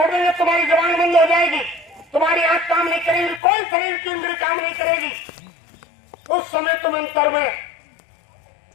देंगे, तुम्हारी जबान बंद हो जाएगी, तुम्हारी आंख काम नहीं करेगी, कोई शरीर की इंद्रिय काम नहीं करेगी, उस समय तुम अंतर में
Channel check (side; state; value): right; drops out; at 3.4 s